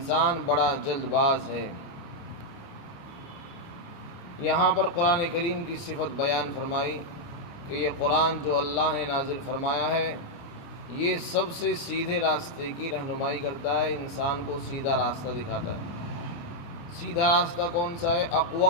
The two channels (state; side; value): late; right; 29 ms